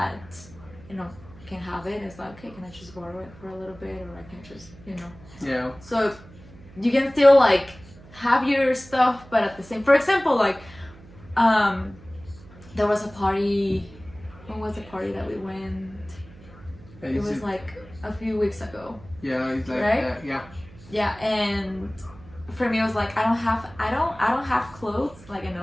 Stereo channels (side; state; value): right; noise; hum, 20 dB below the sound